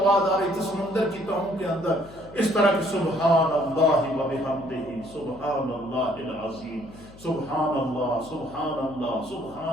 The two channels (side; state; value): left; noise; hum, 20 dB below the sound